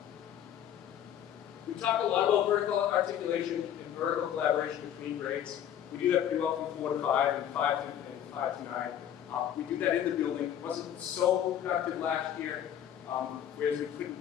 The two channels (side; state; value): right; quieter; 10.1 dB